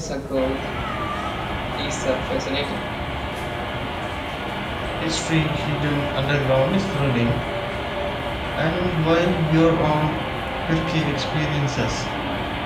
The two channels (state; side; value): identical; both; correlation 1.00